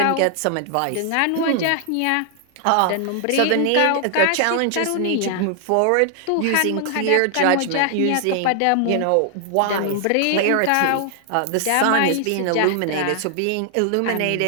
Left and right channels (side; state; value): both; different; correlation 0.00